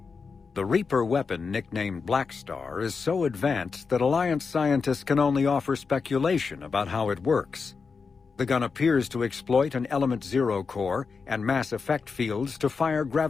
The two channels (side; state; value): right; quieter; 5.1 dB